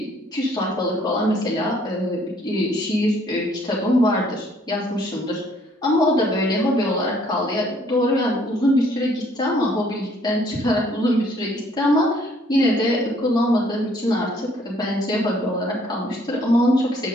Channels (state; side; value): normal; both; correlation 0.62